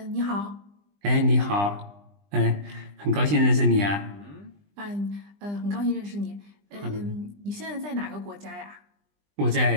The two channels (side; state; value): left; late; 20 ms